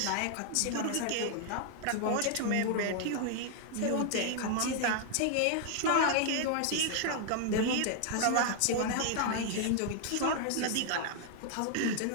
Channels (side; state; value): both; different; correlation 0.00